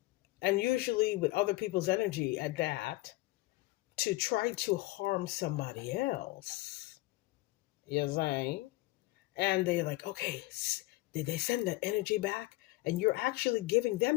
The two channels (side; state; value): right; quieter; 20.1 dB